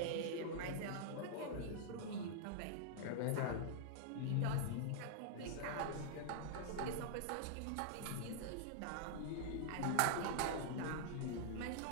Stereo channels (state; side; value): different; both; correlation -0.01